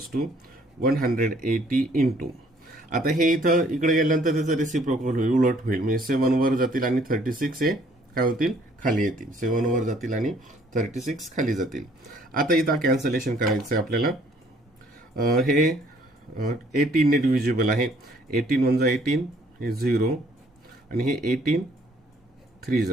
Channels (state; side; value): normal; both; correlation 0.61